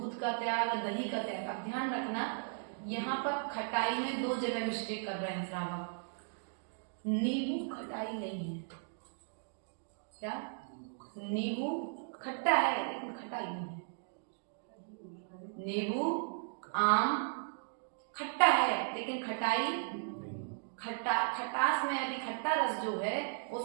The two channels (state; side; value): silent; left; digital silence